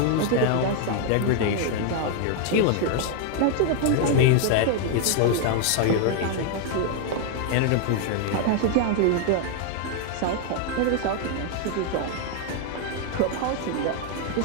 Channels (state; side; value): different; both; correlation 0.01